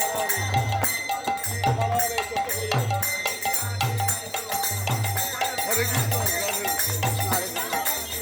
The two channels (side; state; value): both; identical; correlation 1.00